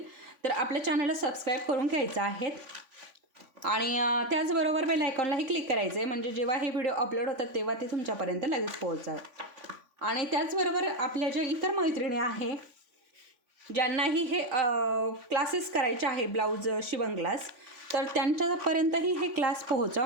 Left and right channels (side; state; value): left; late; 3.5 ms